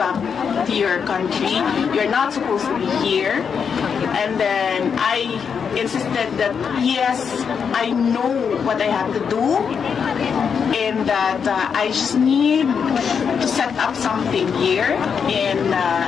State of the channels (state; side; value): quieter; right; 6.6 dB